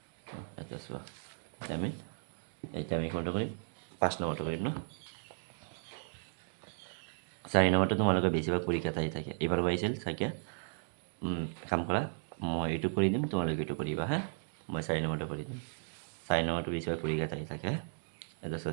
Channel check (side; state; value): left; silent; digital silence